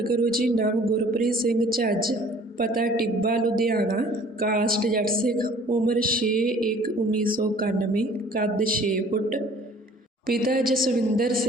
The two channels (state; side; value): normal; both; correlation 0.52